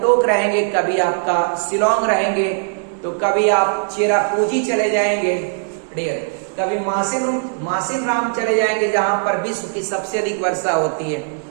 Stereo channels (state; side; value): silent; left; digital silence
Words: रहेंगे, कभी आपका शिलोंग रहेंगे, तो कभी आप चेरापूंजी चले जाएंगे डियर, कभी मासिन राम चले जाएंगे जहां पर विश्व की सबसे अधिक वर्षा होती है,